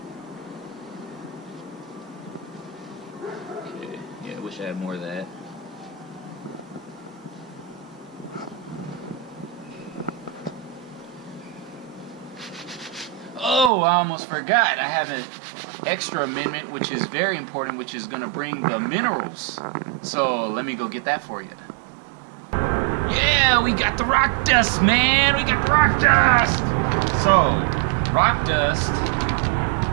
Okay, yeah, I wish I had more of that. Oh, I almost forgot. I have an extra amendment, which is very important, which is going to bring the minerals. So let me go get that for you. Yeah, we got the rock dust, man. We got the rock dust. So, rock dust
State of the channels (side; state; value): left; drops out; at 13.7 s